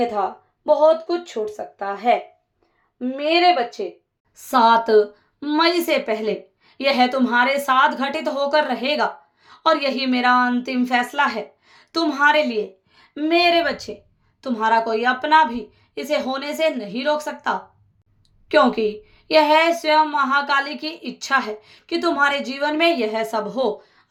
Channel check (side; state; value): both; identical; correlation 1.00